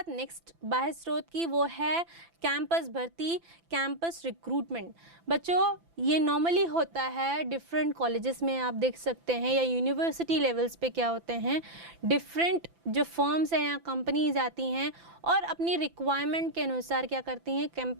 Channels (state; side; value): late; left; 5.9 ms